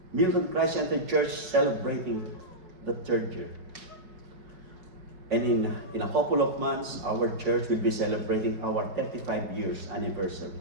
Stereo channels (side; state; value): left; late; 4.8 ms